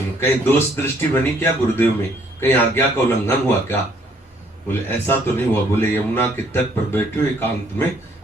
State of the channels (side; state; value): both; normal; correlation 0.64